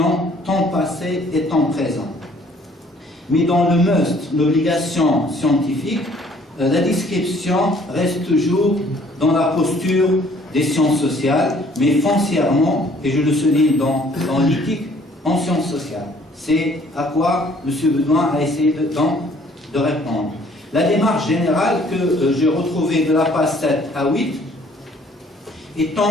temps passé et temps présent. Mais dans le must, l'obligation scientifique, la description reste toujours dans la posture des sciences sociales, mais foncièrement, et je le souligne dans l'éthique, en sciences sociales. C'est à quoi M. Bedoin a essayé de répondre. La démarche générale que j'ai retrouvée de la page 7 à 8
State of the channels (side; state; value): both; normal; correlation 0.59